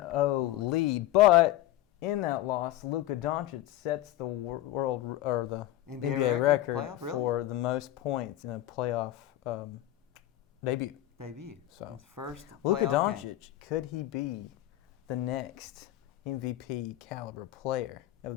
lead. But in that loss, Luka Doncic sets the world or the NBA record for the most points in a playoff debut. So first Luka Doncic, could he be the next MVP caliber player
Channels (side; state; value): right; quieter; 14.5 dB